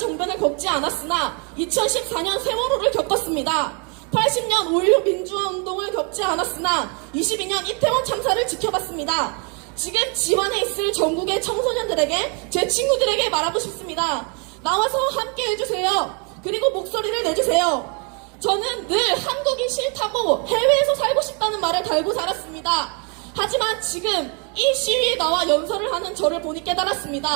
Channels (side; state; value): left; quieter; 35.3 dB